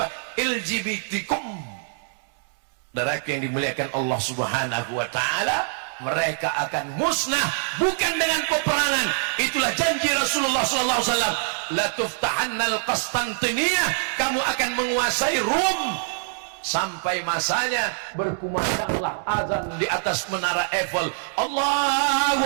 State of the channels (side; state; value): left; silent; 62 dB below the other